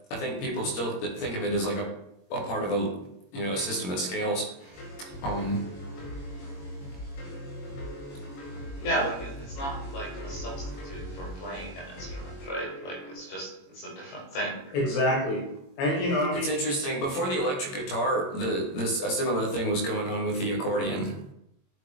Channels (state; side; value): late; right; 21 ms